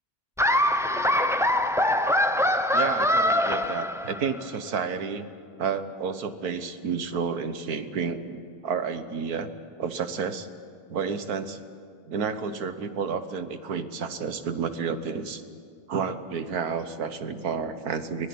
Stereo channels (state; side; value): normal; both; correlation 0.30